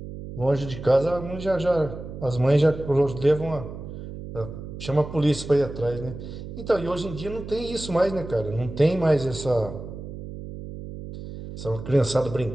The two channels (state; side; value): noise; right; hum, 10 dB below the sound